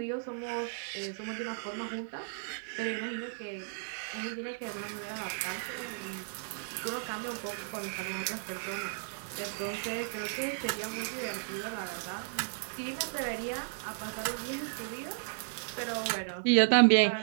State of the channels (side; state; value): left; silent; digital silence